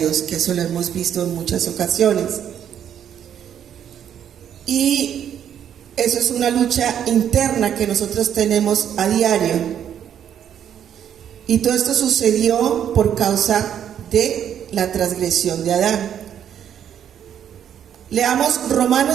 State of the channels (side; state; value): left; quieter; 9.4 dB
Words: que eso lo hemos visto en muchas ocasiones. Y eso es una lucha interna que nosotros tenemos a diario. Y todo esto sucedió por causa de la transgresión de Adán. Leamos